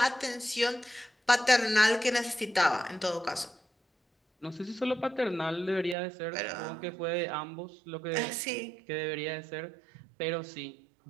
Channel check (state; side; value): drops out; left; at 6.0 s